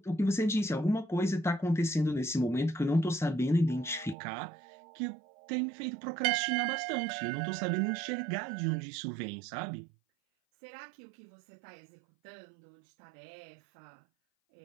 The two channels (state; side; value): drops out; left; at 4.2 s